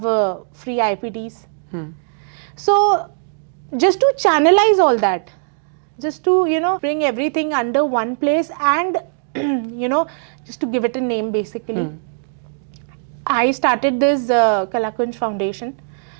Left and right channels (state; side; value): silent; left; digital silence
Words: free IPTs. So just to channelize all that, just to bring everything under one place, and just to give it a name basically, I started this Kalakunj Foundation.